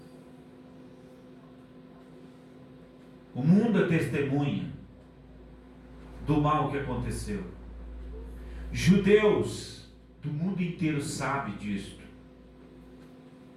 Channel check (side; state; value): both; identical; correlation 1.00